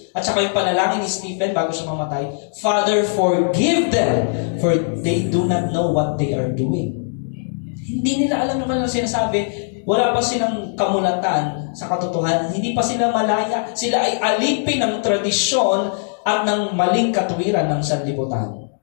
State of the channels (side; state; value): right; silent; digital silence